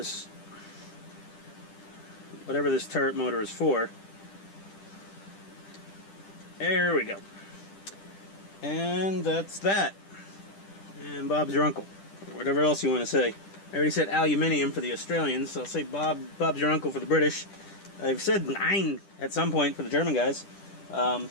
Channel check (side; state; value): right; late; 10 ms